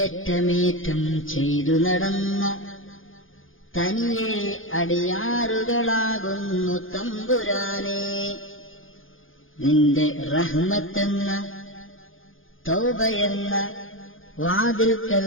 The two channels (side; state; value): right; late; 0.59 ms